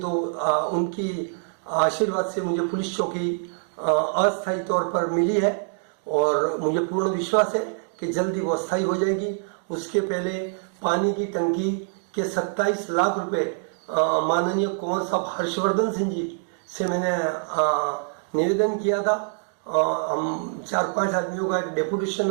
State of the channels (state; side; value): silent; left; 62 dB below the other